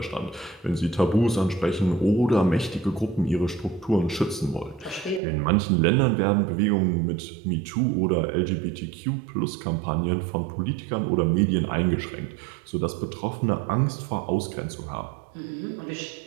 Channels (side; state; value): left; drops out; at 5.2 s